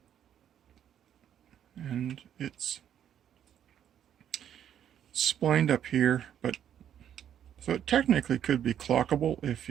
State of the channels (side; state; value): left; quieter; 9.8 dB